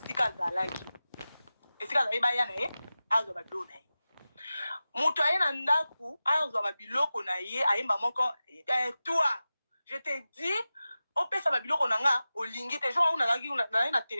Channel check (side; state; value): both; inverted; correlation -0.95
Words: azalaki esika azalaki baya na ye azwa babiloko na ye moto aye na ndaku azwa babiloko na ye ayemba moko toi je te dis opesa babiloko na nga olingi te jour nazalaki na